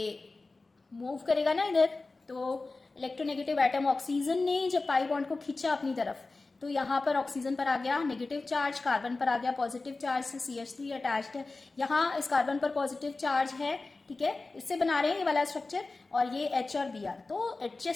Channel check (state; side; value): quieter; right; 3.5 dB